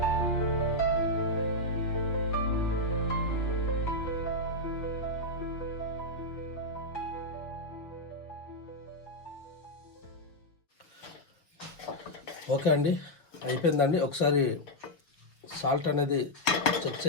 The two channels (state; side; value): late; right; 6.1 ms